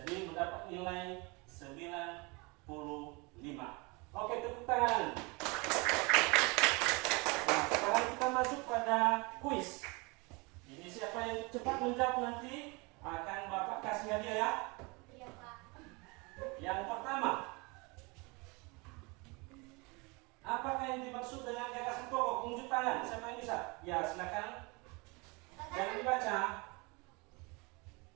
mendapat nilai 90. pertama, apakah yang dimaksud dengan gagasan pokok? Unjuk tangan, siapa yang bisa? Ya, silakan. Jangan dibaca.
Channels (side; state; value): left; quieter; 27.9 dB